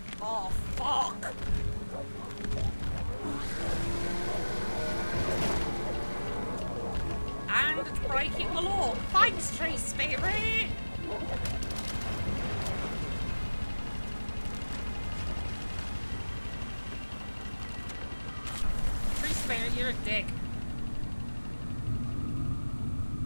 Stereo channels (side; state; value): both; inverted; correlation -1.00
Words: Oh, fuck! And it's breaking the law. Thanks, tree spirit! Tree spirit, you're a dick.